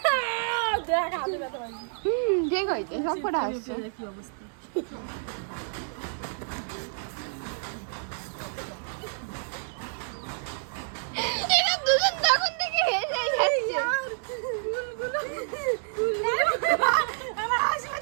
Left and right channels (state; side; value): silent; left; 59 dB below the other